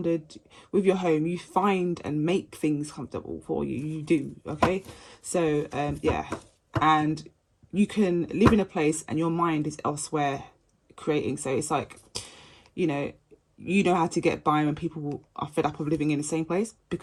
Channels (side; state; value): both; identical; correlation 1.00